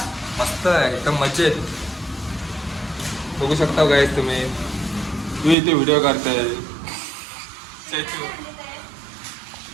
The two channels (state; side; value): drops out; left; at 5.6 s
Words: मस्त आहे एकदम मजेत. बघू शकता काय तुम्ही. तू इथे व्हिडिओ काढताय.